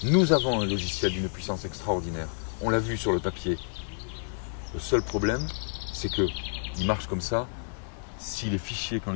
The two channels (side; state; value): right; silent; 58 dB below the other